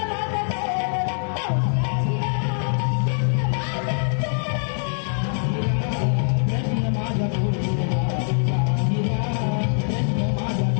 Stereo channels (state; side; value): silent; right; 63 dB below the other